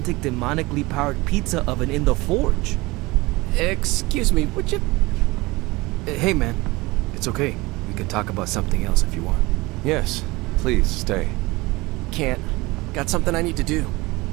demonically powered pizza oven in the forge. Excuse me, would you... Hey man, it's okay. We can talk about something else if you want. Yes, please stay. Can't. Got something I need to do.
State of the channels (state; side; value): quieter; left; 22.2 dB